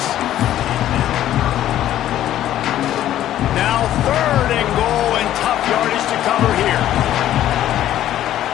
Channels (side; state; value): right; quieter; 12.4 dB